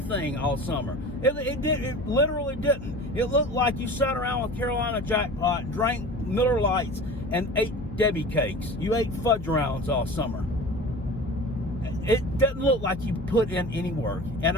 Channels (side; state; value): left; noise; hum, 13 dB below the sound